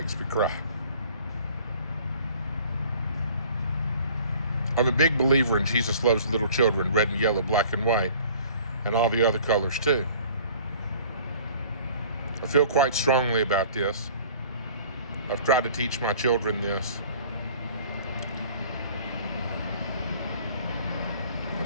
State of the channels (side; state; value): both; inverted; correlation -0.49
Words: me cry. I'm a big believer in Jesus loves little children, red and yellow, black and white, and all the other colors too. I feel quite strongly about this. I've tried to teach my children this.